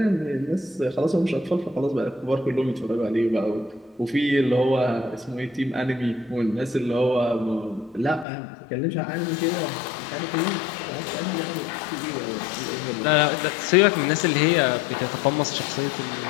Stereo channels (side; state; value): right; drops out; at 8.2 s